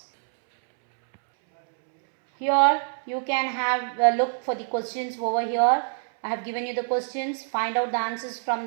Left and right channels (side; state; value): left; silent; 62 dB below the other